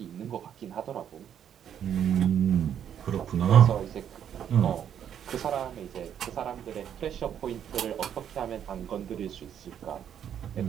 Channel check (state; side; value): quieter; left; 9.2 dB